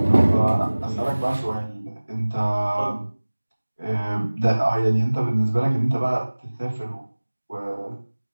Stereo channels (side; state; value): both; inverted; correlation -1.00